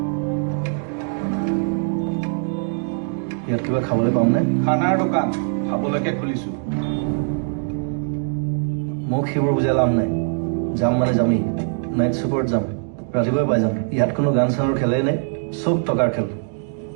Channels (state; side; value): silent; left; 58 dB below the other